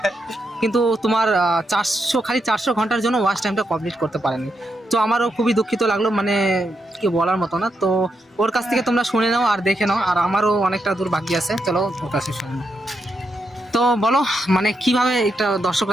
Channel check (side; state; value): both; normal; correlation 0.83